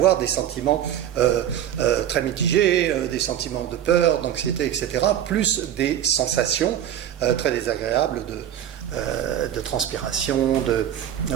des sentiments très mitigés, des sentiments de peur, d'anxiété, etc., plus des sensations très désagréables de transpiration, de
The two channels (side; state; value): left; quieter; 10.6 dB